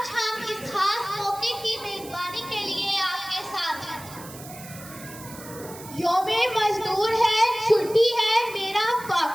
हम इस खास मौके की मेजबानी के लिए आपके साथ हैं। यौम मजदूर है, छुट्टी है, मेरा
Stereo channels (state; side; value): noise; right; hiss, 16 dB below the sound